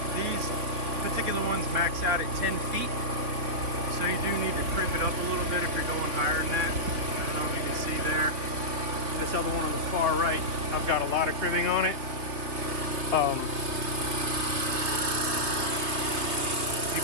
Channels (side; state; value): left; late; 3.3 ms